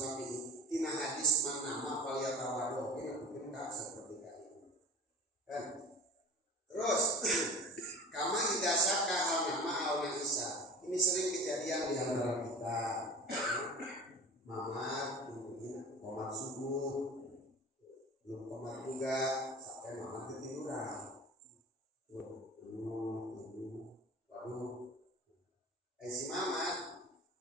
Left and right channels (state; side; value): normal; both; correlation 0.36